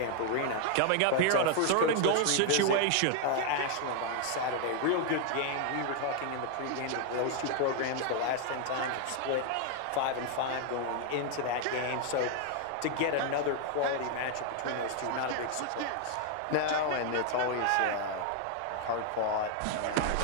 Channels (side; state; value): both; different; correlation 0.00